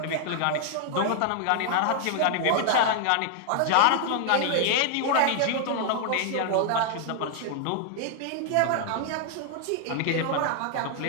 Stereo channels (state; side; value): different; both; correlation 0.00